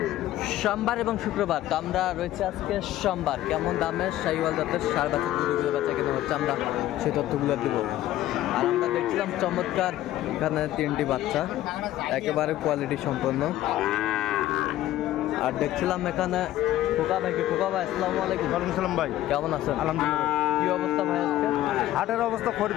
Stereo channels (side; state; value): right; quieter; 14.1 dB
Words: সোমবার এবং শুক্রবার। তো আমরা রয়েছে আজকে সোমবার। কেমন দামে শাহিওয়াল জাতের ষাঁড় বাচ্চা গরুগুলো বেচা কেনা হচ্ছে আমরা সেই তথ্যগুলো দেবো। আর আমরা দেখছিলাম চমৎকার এখানে 3টি বাচ্চা, একেবারে কোয়ালিটি সম্পন্ন। আর দেখছিলাম এখানে খোকা ভাইকে। খোকা ভাই আসসালামু আলাইকুম। ওয়ালাইকুম সালাম ভাই, কেমন আছেন? আলহামদুলিল্লাহ। কি অবস্থা ভাই আজকে? হাটের অবস্থা